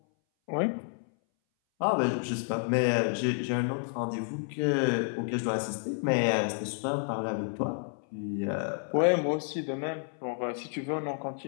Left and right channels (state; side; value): silent; right; 58 dB below the other